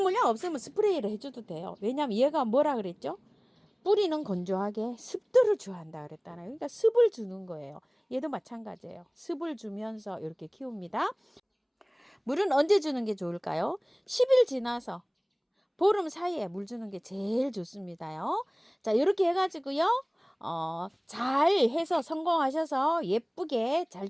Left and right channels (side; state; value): both; identical; correlation 1.00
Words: 몰약 없으면 스프레이를 해줘도 돼요. 왜냐면 얘가 뭐라 그랬죠? 뿌리는 건조하게 습도를 좋아한다 그랬잖아요. 그러니까 습을 주는 거예요. 얘도 마찬가지예요. 습을 주면서 이렇게 키웁니다. 물은 언제 주는 게 좋을까요? 10일 지나서 보름 사이에 물 주는 게 제일 좋습니다요. 자, 이렇게 해가지고요. 잘 해서 성공하셔서 예쁘게 잘